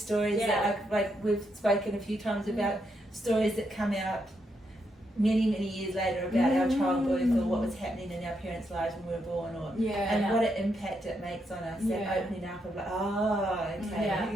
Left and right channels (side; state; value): both; normal; correlation 0.80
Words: Yeah. that like we've spoken a few times about stories that come out many years later about our childbirth or what was happening in our parents' lives when we were born, or Yeah. and what an impact it makes on us. Yeah. That opening up of like, oh, okay, Yeah.